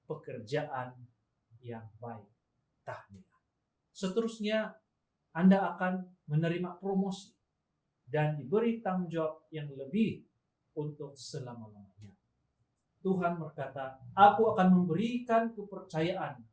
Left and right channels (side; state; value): both; identical; correlation 1.00